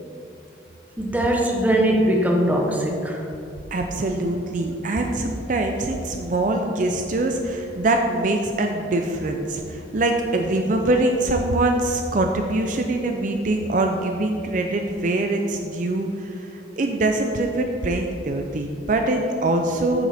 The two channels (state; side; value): normal; both; correlation 0.47